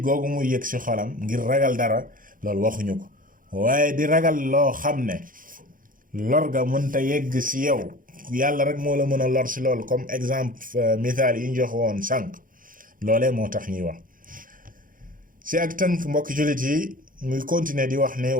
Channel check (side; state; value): left; late; 0.40 ms